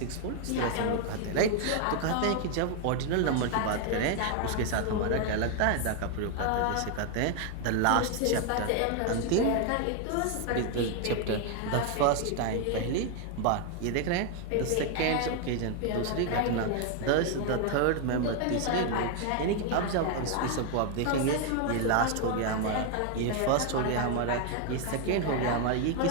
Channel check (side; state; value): both; different; correlation 0.00